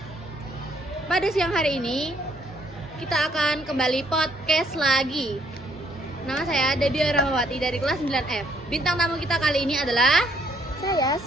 Pada siang hari ini kita akan kembali podcast lagi. Nama saya Debbie Rahmawati dari kelas 9F. Bintang tamu kita kali ini adalah saya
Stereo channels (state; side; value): normal; both; correlation 0.67